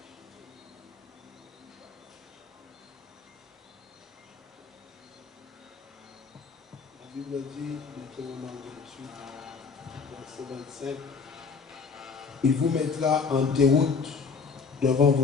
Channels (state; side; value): quieter; right; 5.1 dB